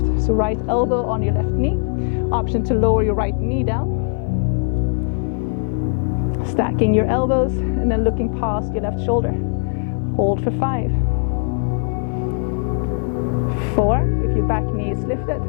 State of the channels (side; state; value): right; silent; 56 dB below the other